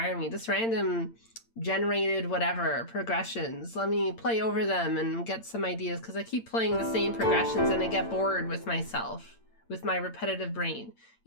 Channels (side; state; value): right; late; 8.8 ms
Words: me, just random generated whatever progressions. Let me play over them and get some ideas, because I keep playing the same progressions and I get bored with myself, with my repetitive brain.